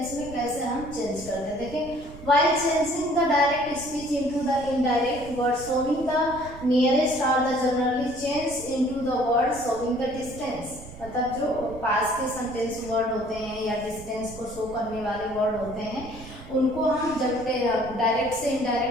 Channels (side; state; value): right; noise; rumble, 16 dB below the sound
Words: में कैसे हम चेंज करते हैं। देखिए, while changing the direct speech into the indirect word showing the nearest or the generally change into the word showing the distance, मतलब जो पास के सेंटेंस वर्ड होते हैं या डिस्टेंस को शो करने वाले वर्ड होते हैं उनको हम जब डायरेक्ट से